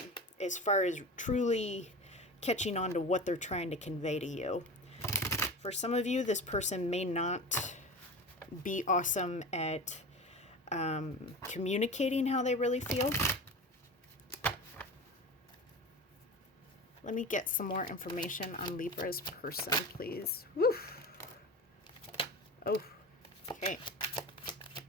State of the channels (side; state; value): both; normal; correlation 0.30